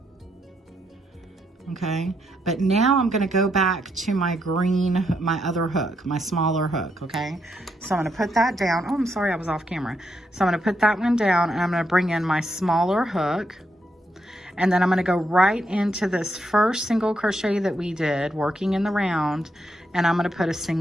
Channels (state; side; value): normal; both; correlation 0.79